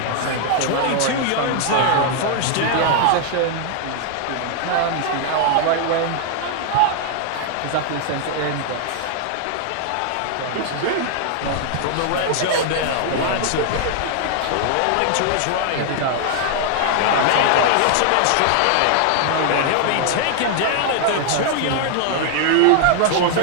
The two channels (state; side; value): different; both; correlation 0.00